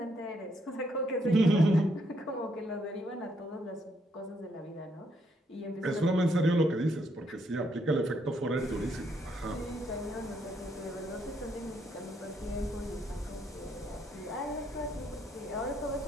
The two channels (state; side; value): normal; both; correlation 0.73